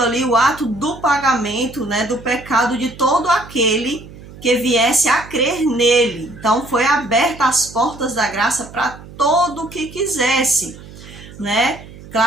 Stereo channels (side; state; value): right; noise; hum, 18 dB below the sound